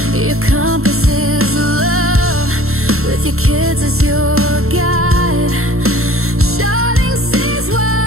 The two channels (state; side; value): late; left; 0.62 ms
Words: Your compass is love, with your kids as your guide. Charting seas